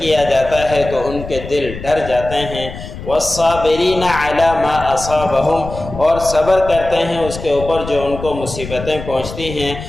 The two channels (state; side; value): noise; left; rumble, 11 dB below the sound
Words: جاتا ہے تو ان کے دل ڈر جاتے ہیں۔ والصابرین علی ما اصابہم، اور صبر کرتے ہیں اس کے اوپر جو ان کو مصیبتیں پہنچتی ہیں۔